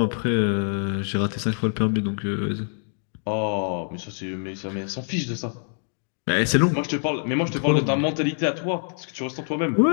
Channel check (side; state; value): right; silent; 62 dB below the other